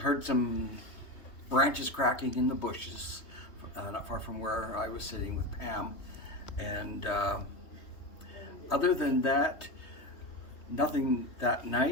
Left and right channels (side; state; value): right; late; 3.3 ms